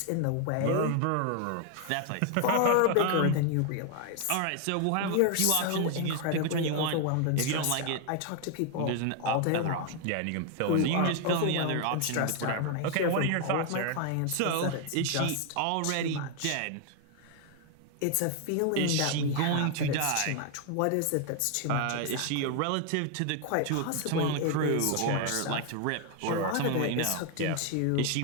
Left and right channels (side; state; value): both; different; correlation 0.00